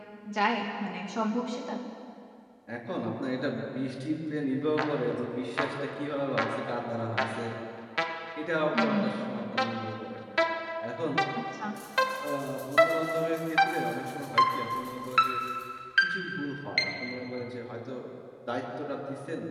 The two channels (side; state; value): both; identical; correlation 1.00